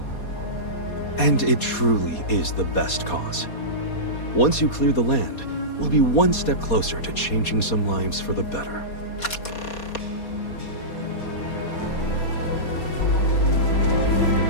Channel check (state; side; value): late; right; 4.2 ms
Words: And it truly is the best cause. Once you clear the land, we'll be one step closer to changing some lives for the better.